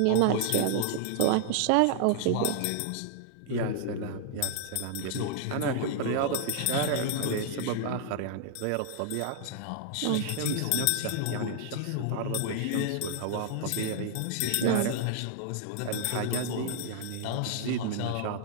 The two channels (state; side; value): different; both; correlation -0.01